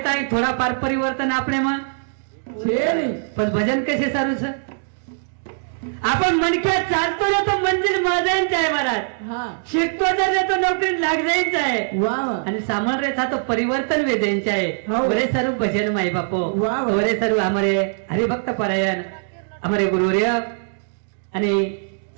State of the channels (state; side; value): silent; left; digital silence